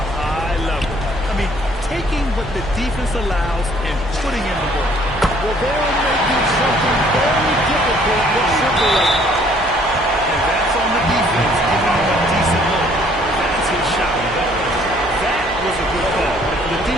high level. I mean, taking what the defense allows and putting in the work. Well, they're making something very difficult look simple right now. And that's on the defense, giving him a decent look. That's his shot. That was a good call. The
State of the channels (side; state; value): right; noise; hum, 15 dB below the sound